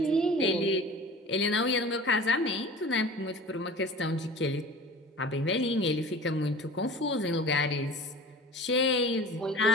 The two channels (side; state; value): both; normal; correlation 0.40